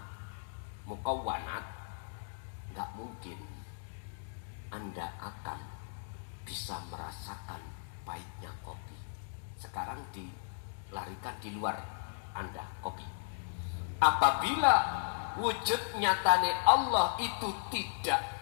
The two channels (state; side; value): silent; right; digital silence